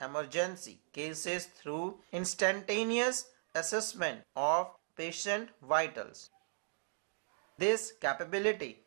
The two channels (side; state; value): left; silent; digital silence